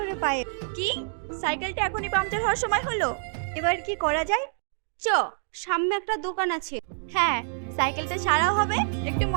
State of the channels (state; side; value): silent; left; 60 dB below the other